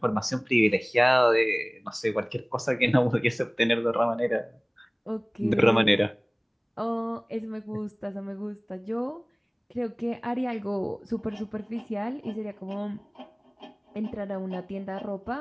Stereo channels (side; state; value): both; identical; correlation 1.00